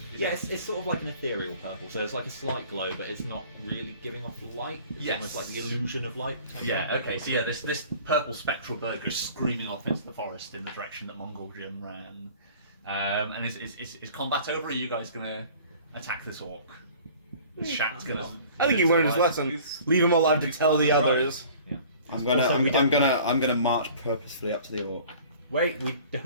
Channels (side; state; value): both; inverted; correlation -0.47